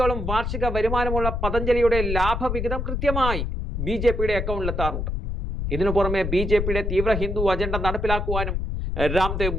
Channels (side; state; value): left; noise; rumble, 2 dB below the sound